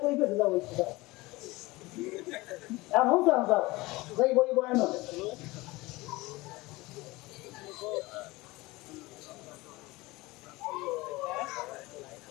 কই পেতে যাও ওই এখন যাও যাও যাই বই বয়ান হবে।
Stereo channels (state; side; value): quieter; right; 21.3 dB